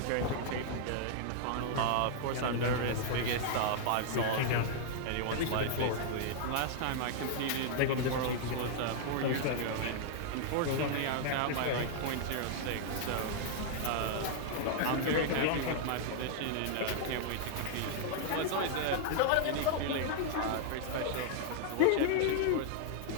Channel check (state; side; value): different; both; correlation -0.01